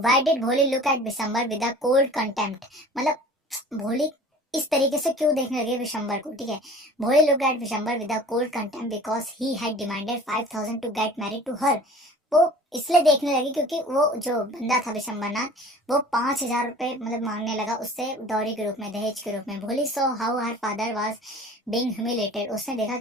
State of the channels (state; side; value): normal; both; correlation 0.44